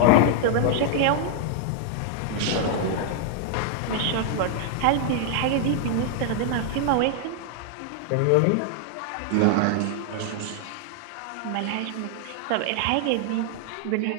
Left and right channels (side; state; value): both; different; correlation 0.00